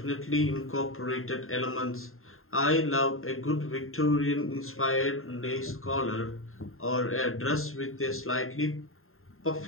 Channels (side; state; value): right; late; 0.61 ms